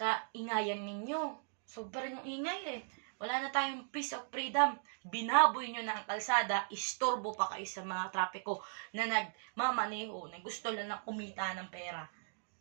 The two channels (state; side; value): silent; left; digital silence